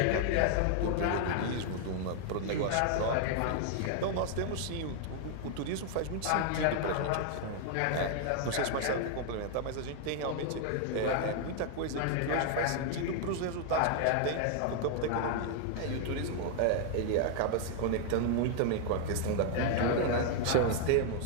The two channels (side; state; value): both; different; correlation 0.00